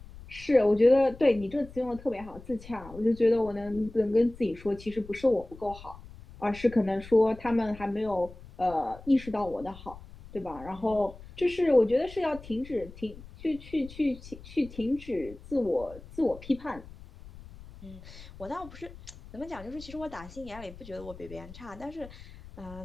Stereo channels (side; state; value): left; noise; rumble, 17 dB below the sound